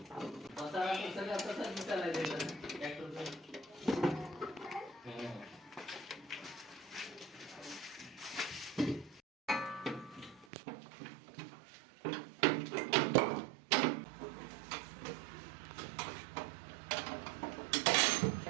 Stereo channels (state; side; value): drops out; left; at 10.5 s